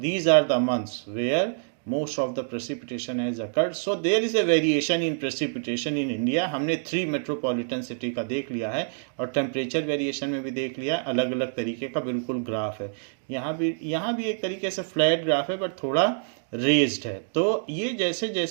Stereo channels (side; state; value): left; silent; digital silence